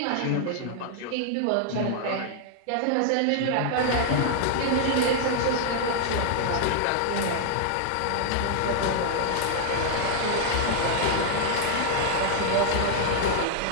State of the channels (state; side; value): different; both; correlation 0.00